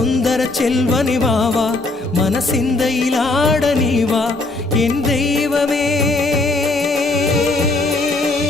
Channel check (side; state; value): right; quieter; 3.1 dB